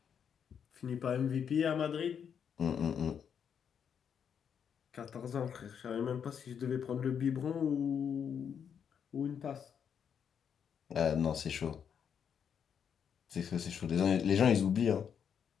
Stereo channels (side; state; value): right; quieter; 7.7 dB